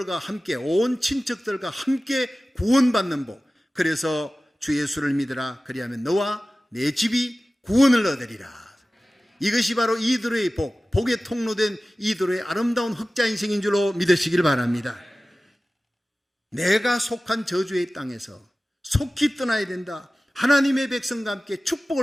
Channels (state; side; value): normal; both; correlation 0.96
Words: 함께, 온 친척들과 함께 구원받는 복. 그래서 주 예수를 믿으라. 그리하면 너와 내 집이 구원을 얻으리라. 이것이 바로 이드로의 복, 복의 통로된 이드로의 아름다운 흑자 인생인 줄로 믿으시길 바랍니다. 내가 속한 저주의 땅에서 속히 떠나야 된다. 하나님의 백성과 함께